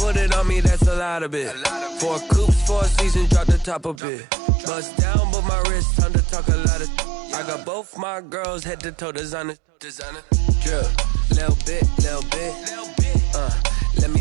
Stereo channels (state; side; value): drops out; left; at 4.0 s